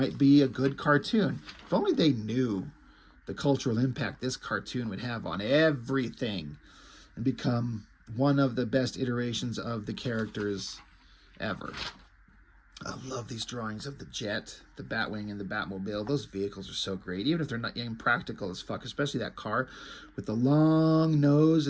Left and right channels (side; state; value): both; identical; correlation 1.00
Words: be a good cartoon. If only they knew the cultural impact this cartoon would have on everything and become one of the best iterations of the characters ever. I love these drawings of the jet, the Batwing, and the Batmobile. Those vehicles are so great, even if they're not impractical as fuck, especially that car with the long nose